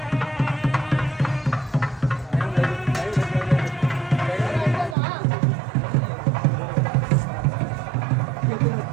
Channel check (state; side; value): drops out; left; at 5.0 s